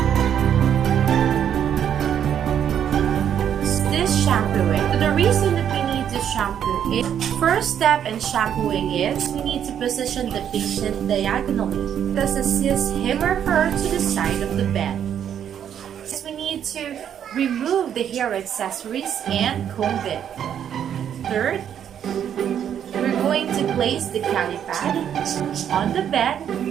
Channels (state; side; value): quieter; left; 9.2 dB